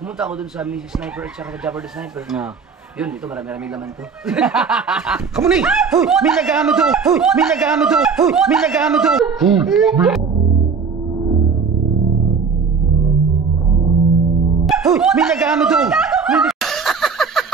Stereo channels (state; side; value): quieter; left; 5.5 dB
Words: ako dun sa Mrs. Sniper at saka Jabber the Sniper. Na. Yun, ito marami-rami laman to. Kamunay! Hoy! May nag-ano to! Hoy! May nag-ano to! Hoy! May nag-ano to! Hoy! May nag-ano to!